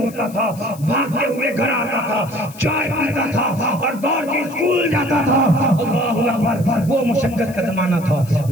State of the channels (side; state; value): left; noise; hiss, 20 dB below the sound